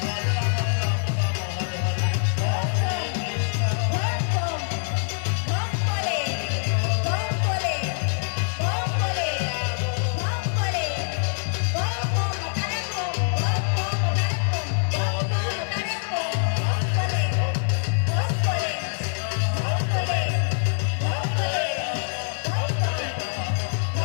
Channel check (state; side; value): silent; right; 59 dB below the other